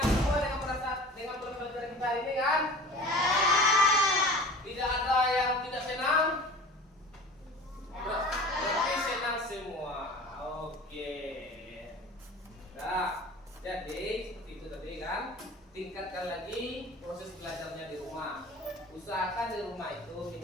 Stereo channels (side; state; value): both; normal; correlation 0.41